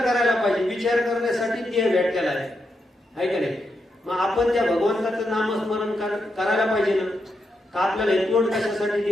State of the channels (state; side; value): normal; both; correlation 0.84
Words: पाहिजे. विचार करण्यासाठी देह भेटलेला आहे का नाही? मग आपण त्या भगवंताचं नामस्मरण करायला पाहिजे ना. का आपल्याला हे तोंड कशासाठी